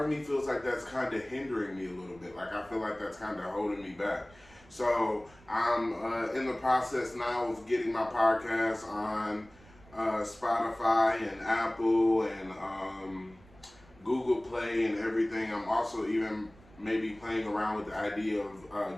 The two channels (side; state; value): right; noise; rumble, 25 dB below the sound